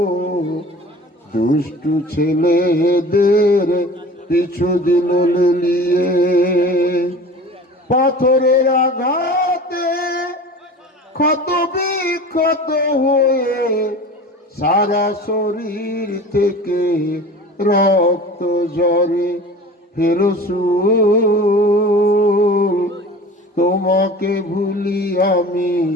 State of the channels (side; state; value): both; normal; correlation 0.39